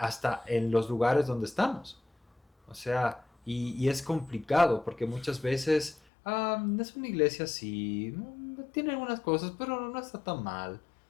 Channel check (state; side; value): drops out; right; at 6.0 s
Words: en los lugares donde estamos. O sea, y es complicado porque muchas veces es una iglesia así, tiene algunas cosas, pero no está tan mal.